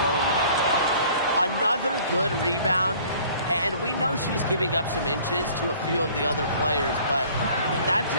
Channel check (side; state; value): both; inverted; correlation -0.52